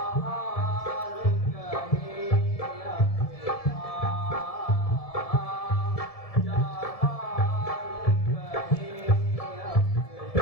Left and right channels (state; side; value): late; right; 1.7 ms